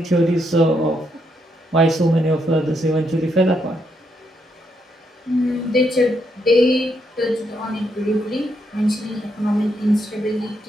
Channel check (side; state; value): both; normal; correlation 0.78